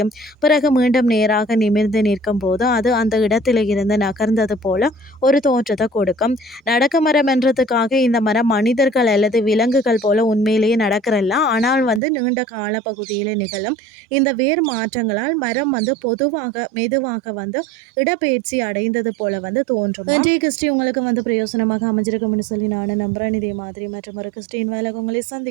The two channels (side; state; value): left; drops out; at 12.0 s